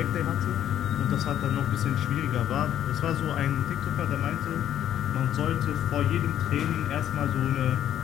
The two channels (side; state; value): right; quieter; 11.0 dB